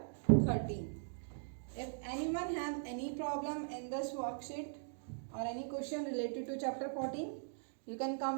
13. If anyone have any problem in this worksheet or any question related to chapter 14, you can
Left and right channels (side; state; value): left; silent; digital silence